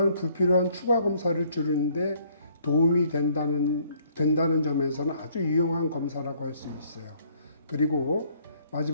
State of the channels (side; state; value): both; inverted; correlation -0.64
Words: 불필요한 추가 검사를 줄이는데 도움이 된다는 점에서는 아주 유용한 검사라고 할 수 있어요. 그리고